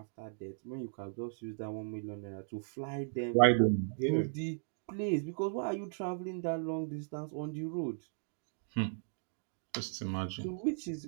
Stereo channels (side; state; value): left; silent; digital silence